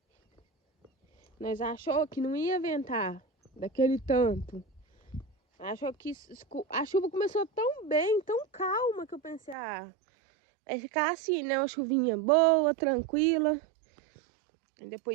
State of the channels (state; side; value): drops out; left; at 9.6 s